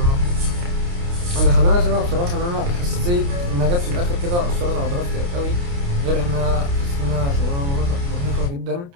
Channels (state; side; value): late; left; 29 ms